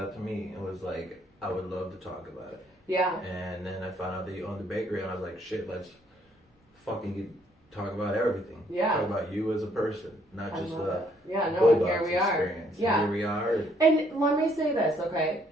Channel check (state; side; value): normal; both; correlation 0.67